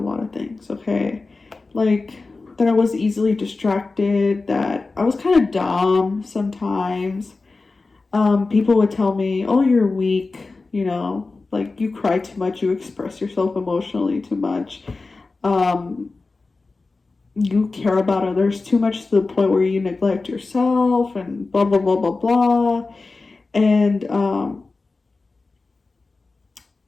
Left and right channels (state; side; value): quieter; right; 3.7 dB